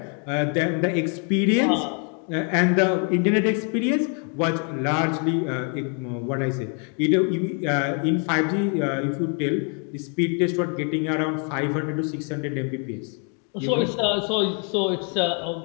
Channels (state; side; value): quieter; right; 40.0 dB